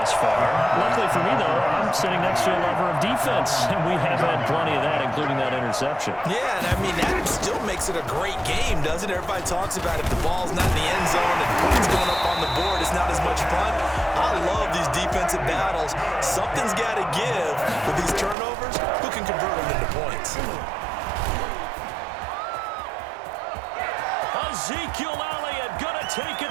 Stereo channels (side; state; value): left; drops out; at 18.4 s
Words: far. Luckily for me, though, I'm sitting next to a lover of defense, and we have had plenty of that, including that interception. Yeah, and I mean, that still makes it a great game, doesn't it? Everybody talks about if the ball's not in the end zone and points going up on the board, it's not as much fun. I love these defensive battles. Something's got to give with these turnovers. Who can convert them into points? Ezekiel Elliott gonna take it